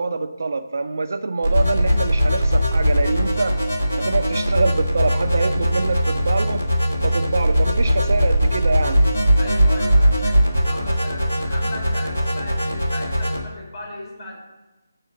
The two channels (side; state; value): both; inverted; correlation -0.91